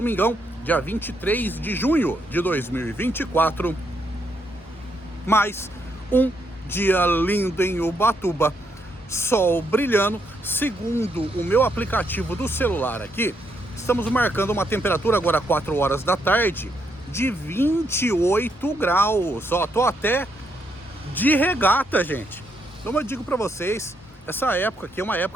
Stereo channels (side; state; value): both; normal; correlation 0.77